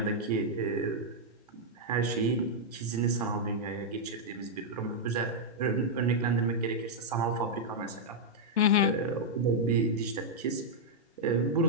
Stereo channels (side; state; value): both; normal; correlation -0.05